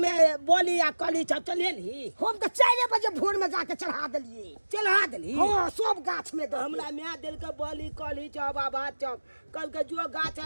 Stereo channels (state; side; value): inverted; both; correlation -1.00